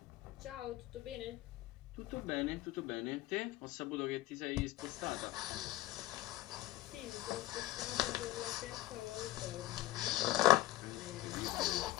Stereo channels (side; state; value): right; quieter; 16.3 dB